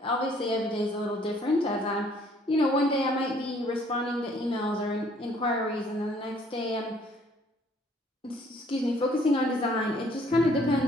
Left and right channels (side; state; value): both; normal; correlation 0.61